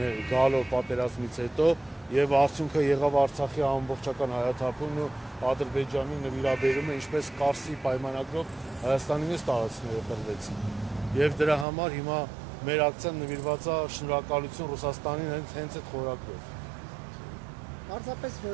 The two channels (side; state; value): left; drops out; at 11.7 s